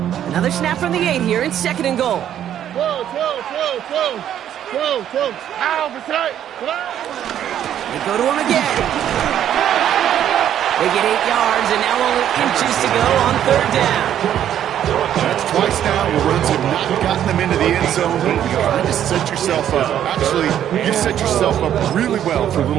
Another snap from the 8 here in 2nd and goal. 12. Ow, beside. They go to him again. They get 8 yards, and now only inches to go on 3rd down. That's twice now where runs have not gotten them into the end zone. You're trying to set yourself up. Actually, you've set yourself up really well for a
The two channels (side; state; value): left; quieter; 10.5 dB